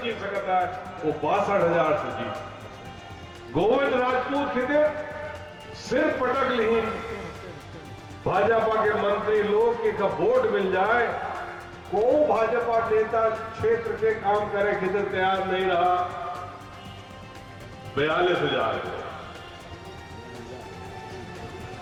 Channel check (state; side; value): identical; both; correlation 1.00